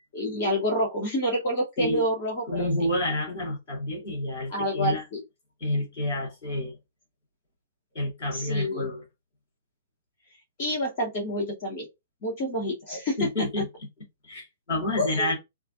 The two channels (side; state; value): both; inverted; correlation -0.45